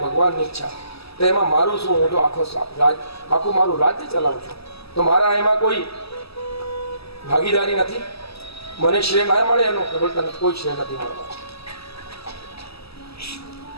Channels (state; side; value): late; right; 0.78 ms